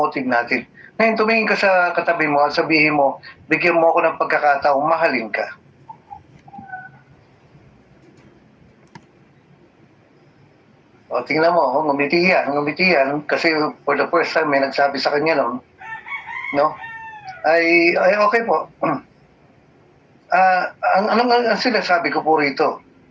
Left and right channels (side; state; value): both; identical; correlation 1.00